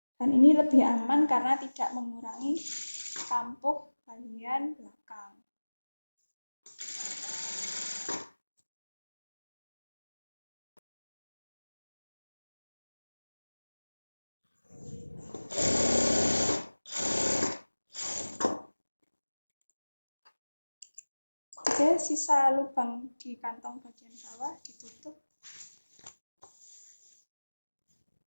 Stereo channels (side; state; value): both; inverted; correlation -1.00